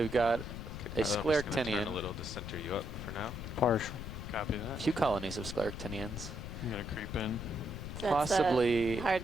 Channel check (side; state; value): left; noise; rumble, 8 dB below the sound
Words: got a I'm just gonna turn a scleractinian, little to center you up for now. Partial. Copy a that. few colonies of scleractinians. I'm going to creep in. That's Possibly, the hard